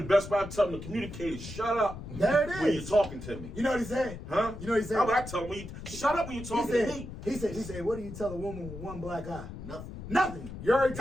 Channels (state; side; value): noise; left; rumble, 11 dB below the sound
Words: best way I tell them to communicate is shut up There it when you're is. talking to me. You know what he said? Huh? You know what he said? How would I tell them? Shut up when you're He talking to me. said, what do you tell a woman with 1 black eye? Nothing. Nothing. You already